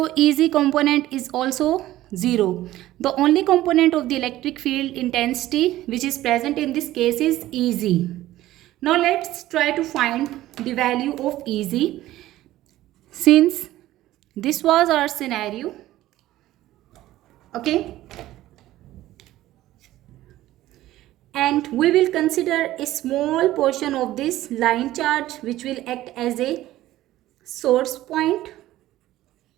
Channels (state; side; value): quieter; left; 15.1 dB